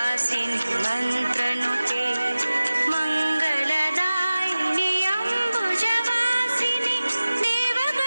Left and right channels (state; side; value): inverted; both; correlation -0.97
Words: मन्त्रनुते मङ्गलदायिनि अम्बुजवासिनि